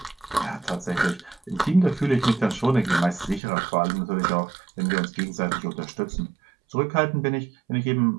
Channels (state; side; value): drops out; left; at 3.4 s